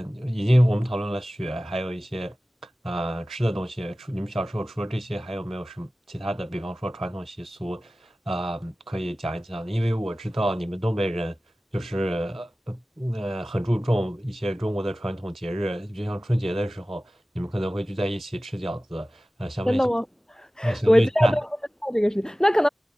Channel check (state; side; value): normal; both; correlation 0.97